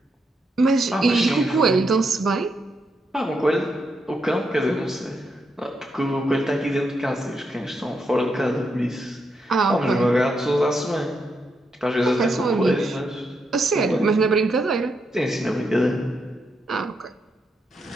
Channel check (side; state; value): both; normal; correlation 0.81